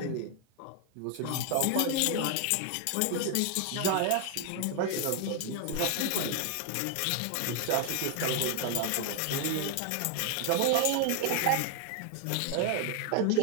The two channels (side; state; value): both; different; correlation 0.00